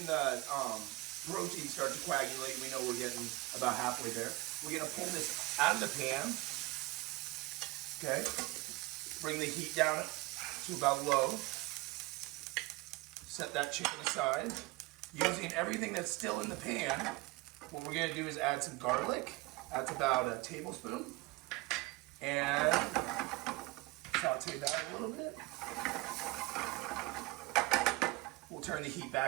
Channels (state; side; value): quieter; left; 21.5 dB